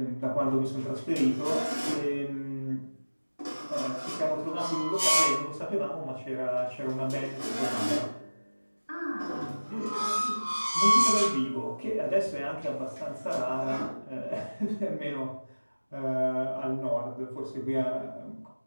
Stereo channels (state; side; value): inverted; both; correlation -1.00